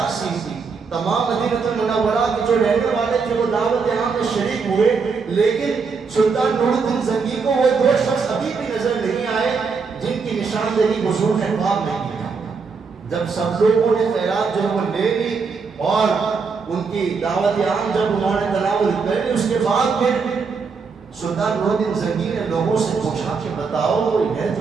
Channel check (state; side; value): quieter; left; 5.1 dB